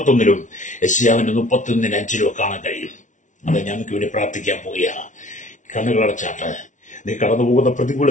യെശയ്യാവിന്റെ 31:5 കാണാൻ കഴിയും. അത് ഞങ്ങൾക്ക് വേണ്ടി പ്രാർത്ഥിക്കാൻ പോവുക. കണ്ണുകളടച്ചാട്ട് നീ കടന്നു പോകുന്ന പ്രതികൂല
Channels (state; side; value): late; right; 0.37 ms